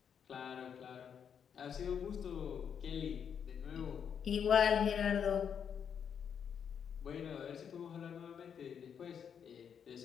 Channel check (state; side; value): quieter; right; 7.7 dB